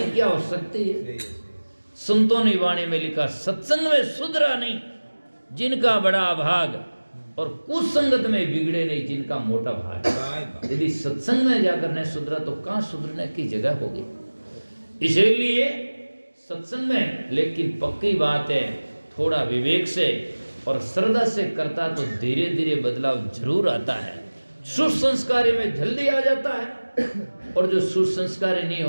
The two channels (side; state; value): both; inverted; correlation -1.00